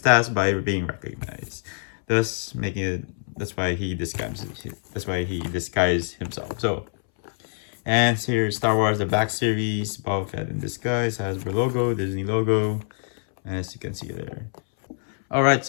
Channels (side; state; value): right; silent; 62 dB below the other